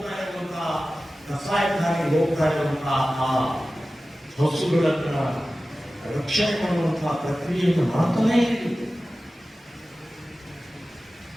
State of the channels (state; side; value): normal; both; correlation 0.95